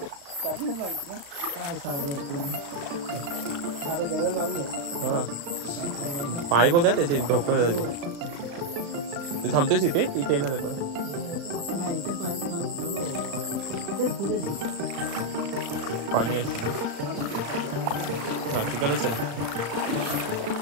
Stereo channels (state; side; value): late; left; 35 ms